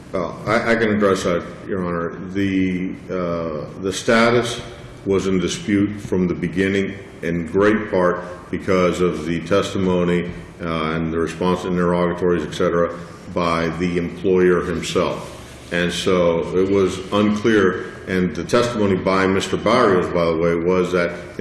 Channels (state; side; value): identical; both; correlation 1.00